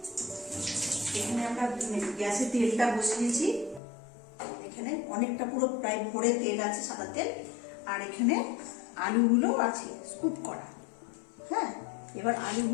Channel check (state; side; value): drops out; right; at 3.8 s